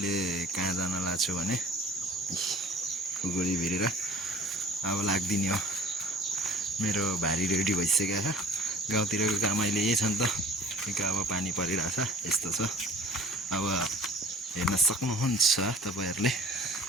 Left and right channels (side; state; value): both; normal; correlation 0.48